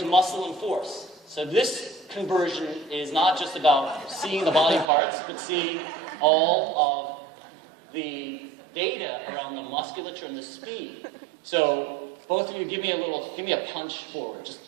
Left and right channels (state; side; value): drops out; left; at 4.9 s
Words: muscle and force. So this conversion is not just about seeing the body parts, but seeing all of the data around the musculature and the speed. So both of you give me a punch forward.